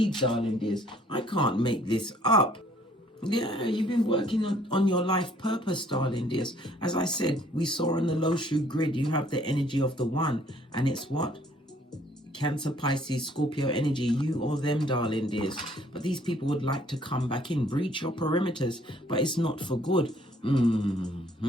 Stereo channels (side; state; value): both; normal; correlation 0.60